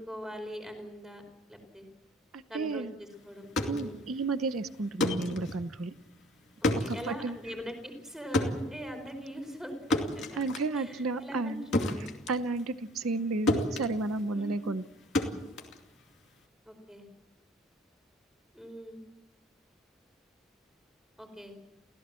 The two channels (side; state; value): both; normal; correlation 0.54